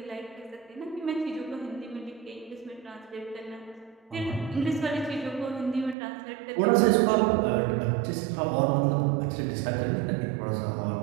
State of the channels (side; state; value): left; drops out; at 6.0 s